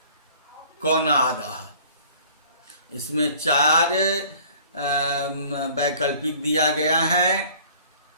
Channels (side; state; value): both; inverted; correlation -0.51